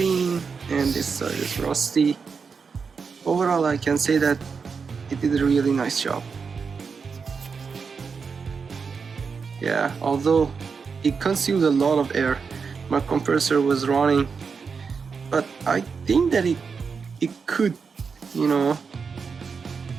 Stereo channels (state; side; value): quieter; left; 5.5 dB